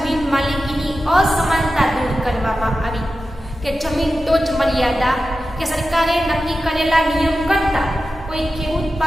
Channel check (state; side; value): normal; both; correlation 0.92